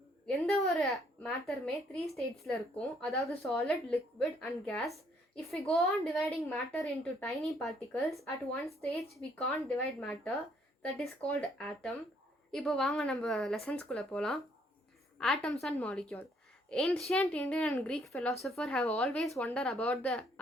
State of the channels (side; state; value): both; normal; correlation 0.67